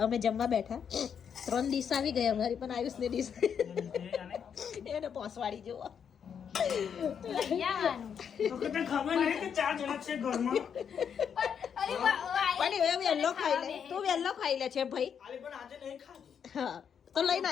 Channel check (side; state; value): right; quieter; 7.6 dB